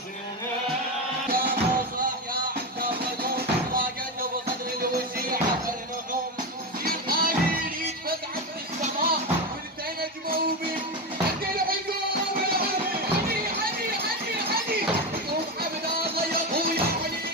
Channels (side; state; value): both; normal; correlation 0.16